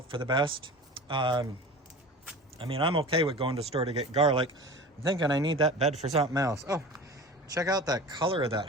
for the best. I mean, I'm okay with going to the store to get garlic. I'm thinking I need that bed for something else. Oh, check out that color of that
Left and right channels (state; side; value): normal; both; correlation 0.36